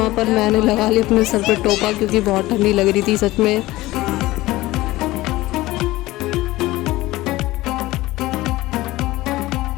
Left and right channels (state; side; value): quieter; right; 18.2 dB